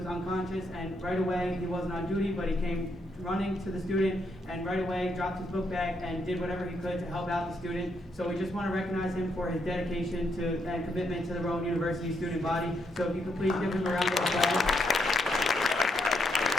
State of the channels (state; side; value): normal; both; correlation 0.77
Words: unconscious, and right away, he wasn't on duty, but he came running to the student and right away dropped his book bag and did whatever he could to help out the student. So we just want to recognize him for his dedication to and commitment to the Rowan University student body. So if you could please give him a round of applause.